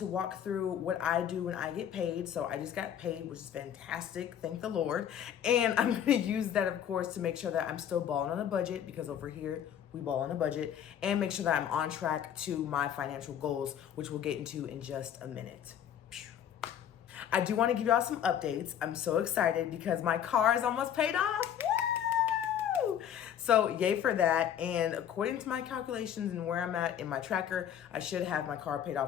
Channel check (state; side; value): quieter; right; 9.6 dB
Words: walk through what I do when I get paid. So I just got paid, which is fantastic. Thank the Lord. And I'm going to use that, of course, to make sure that I'm still balling on a budget, because over here, we ball on a budget, and make sure that I'm on track to my financial goals, which we'll get into in just a minute. I do want to give y'all some updates. I'm so excited because my car is almost paid off. Woo! So yay for that. And according to my calculations and where I'm at in my tracker, I should have my car paid